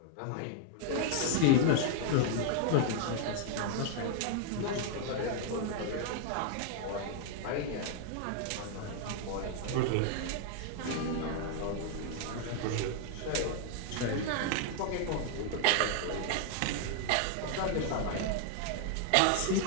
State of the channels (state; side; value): different; both; correlation 0.00